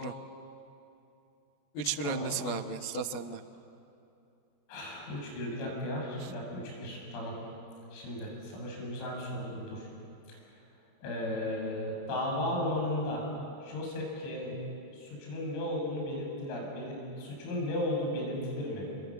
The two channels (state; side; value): late; right; 21 ms